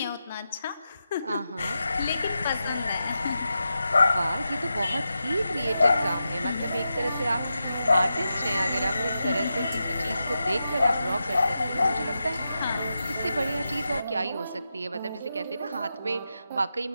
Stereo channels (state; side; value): inverted; both; correlation -0.89